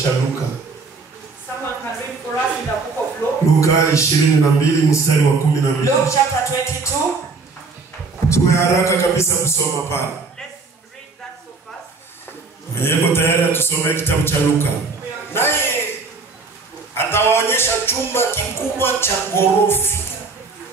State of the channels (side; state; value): left; quieter; 4.3 dB